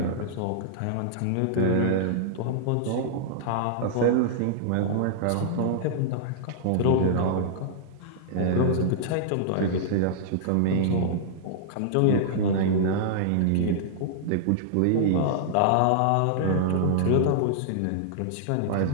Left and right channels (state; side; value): different; both; correlation -0.01